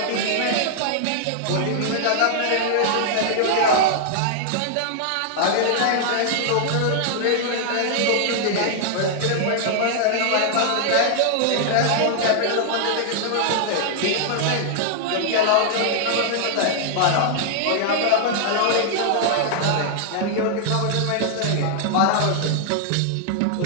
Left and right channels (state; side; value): different; both; correlation -0.01